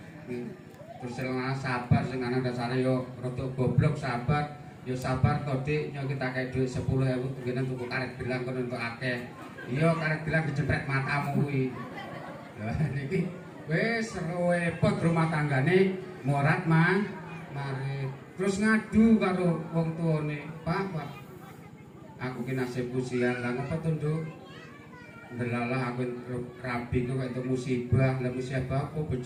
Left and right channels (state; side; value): identical; both; correlation 1.00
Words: Terus sabar sing ana dasare yo rada goblok sabar. Yo sabar to Dik, yo kita kayak duit 10.000 kene tuku karet gelang kono entuk akeh. Iya karet gelang dijepret matamu kuwi. Lah niki wis repot rumah tanggane morat mari. Terus ngadu karo wong tuane, Pak, aku ki nasibku sial, lah ngapa to, Nduk? Ndelalah aku rabi kok entuk musibah, lah musibah apa